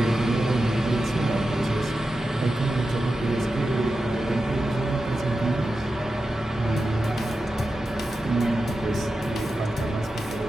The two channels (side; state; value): both; normal; correlation 0.91